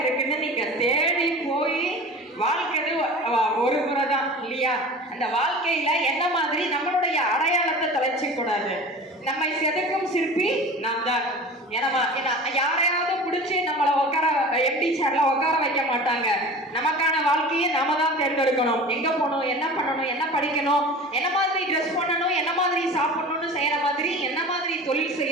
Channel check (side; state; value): both; normal; correlation 0.37